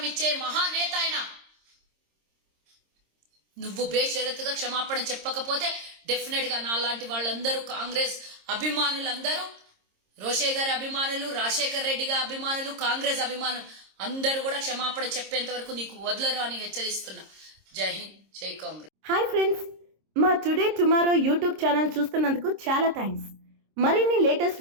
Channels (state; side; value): late; left; 26 ms